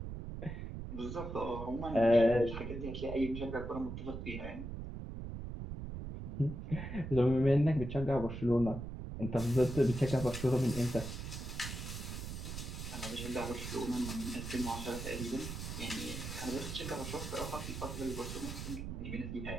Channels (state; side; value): noise; right; rumble, 7 dB below the sound